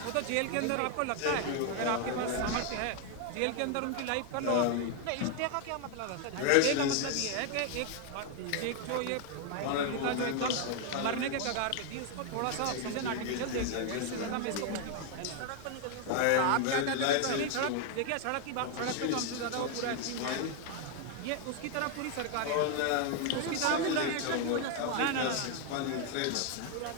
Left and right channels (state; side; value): different; both; correlation 0.00